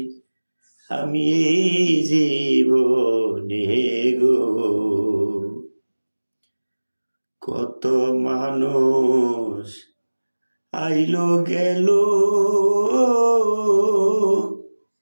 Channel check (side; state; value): both; inverted; correlation -1.00